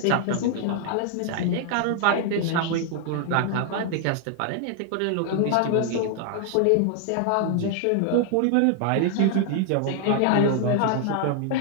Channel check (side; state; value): both; different; correlation 0.00